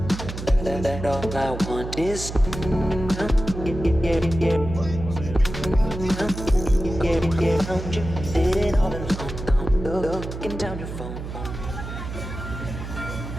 That all I want is found you sitting all alone, looking down your phone.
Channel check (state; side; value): noise; right; hum, 8 dB below the sound